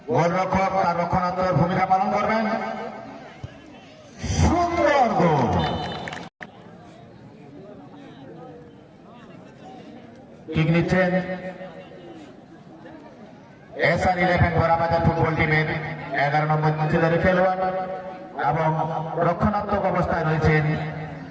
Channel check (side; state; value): both; identical; correlation 1.00